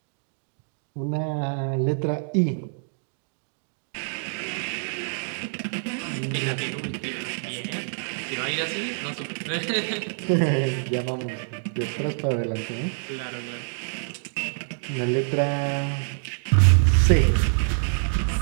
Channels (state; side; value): silent; left; digital silence